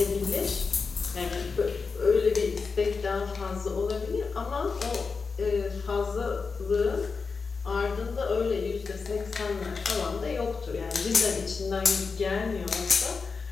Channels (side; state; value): right; quieter; 4.8 dB